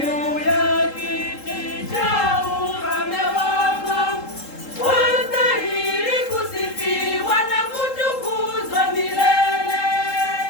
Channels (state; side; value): late; right; 3.7 ms